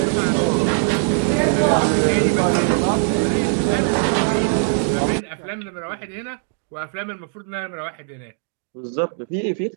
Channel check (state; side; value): silent; left; digital silence